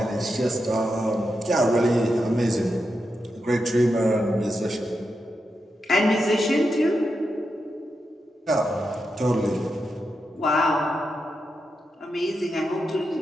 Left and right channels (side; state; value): both; normal; correlation 0.87